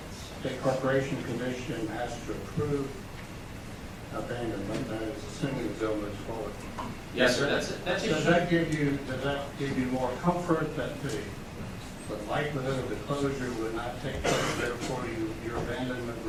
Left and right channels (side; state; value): both; identical; correlation 1.00